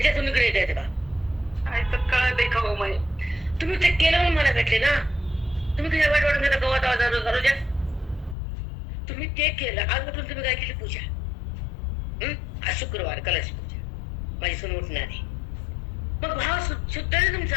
तुम्ही इकडे येत का? काय तर कळत का हो माई? तुम्ही ते केलं म्हणून मला भेटले ना. तुम्ही तुझ्या वाईट वाटून घेता गवत आवाज. तुम्ही ते केलं, आज उठून तुम्ही काय केली? पूजा. आज शुक्रवार कलश पूजा, माझी सून उठणार आहे. मग भाव शुद्ध आहे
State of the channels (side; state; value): right; drops out; at 8.3 s